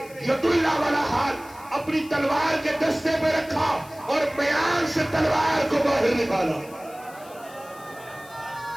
ید اللہ والا ہاتھ اپنی تلوار کے دستے پہ رکھا اور میان سے تلوار کو باہر نکالا.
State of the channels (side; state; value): left; noise; hiss, 22 dB below the sound